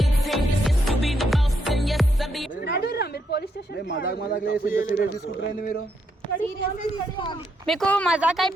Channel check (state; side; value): normal; both; correlation 0.77